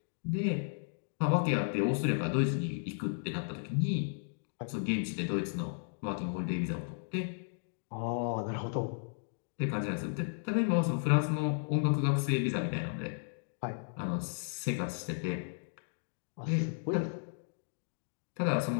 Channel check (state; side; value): silent; right; digital silence